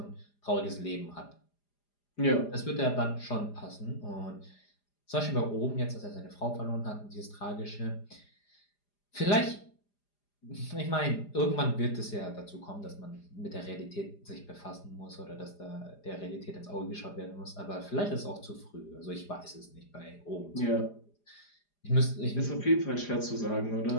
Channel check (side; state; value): right; late; 4.9 ms